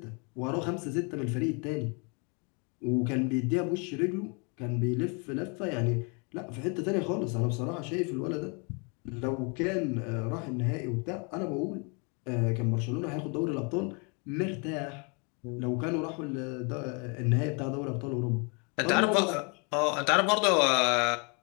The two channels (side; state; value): right; quieter; 34.2 dB